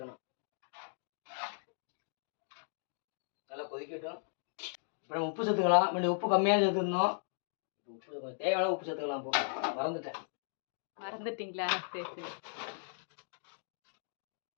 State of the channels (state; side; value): silent; right; digital silence